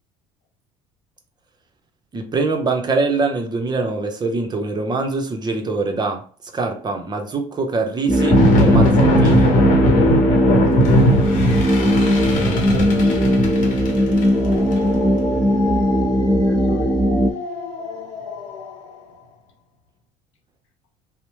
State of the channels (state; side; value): normal; both; correlation 0.64